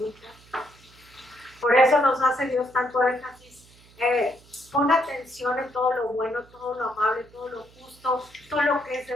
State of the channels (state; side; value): noise; right; hum, 26 dB below the sound